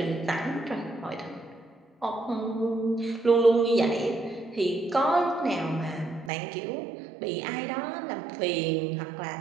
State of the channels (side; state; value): left; drops out; at 6.3 s